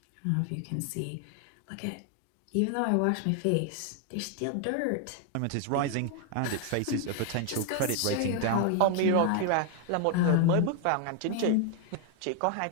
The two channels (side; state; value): both; different; correlation 0.00